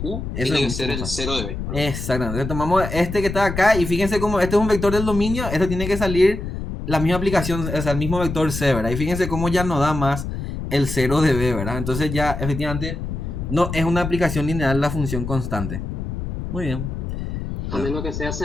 U Eso tiene que es ser mucho el más 0 de B. Exactamente. Entonces tomamos este que está acá y fíjense cómo este es un vector del dominio, esto tiene que salir la misma aplicación, o sea, el mismo vector C, ¿verdad? Y fíjense cómo ya no da más el 0 de B, ¿verdad? Entonces ya efectivamente no es una aplicación lineal la función constante. Muy bien. A menos que sea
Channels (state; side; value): noise; left; rumble, 5 dB below the sound